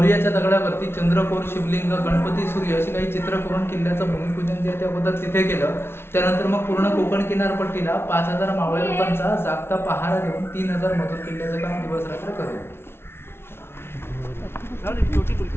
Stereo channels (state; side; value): late; right; 0.12 ms